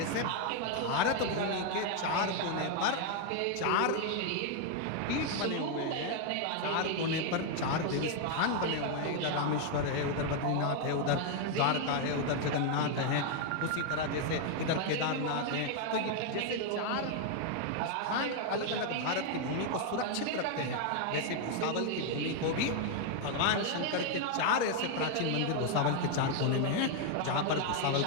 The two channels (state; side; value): different; both; correlation 0.01